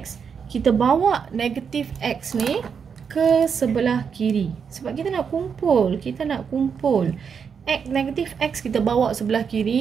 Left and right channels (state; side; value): quieter; left; 6.6 dB